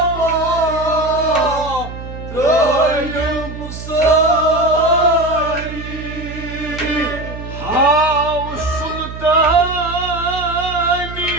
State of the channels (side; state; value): right; noise; hum, 10 dB below the sound